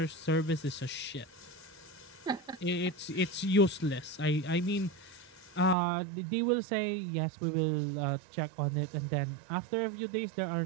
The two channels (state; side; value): drops out; left; at 5.8 s